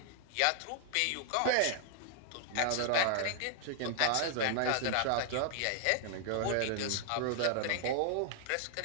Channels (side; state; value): both; different; correlation 0.00